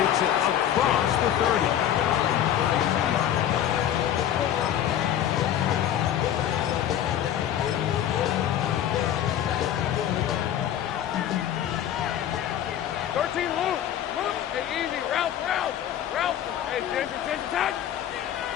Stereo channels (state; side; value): quieter; right; 10.7 dB